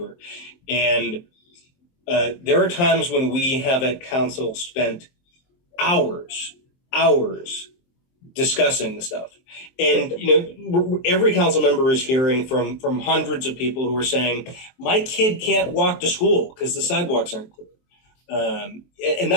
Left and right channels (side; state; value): right; late; 23 ms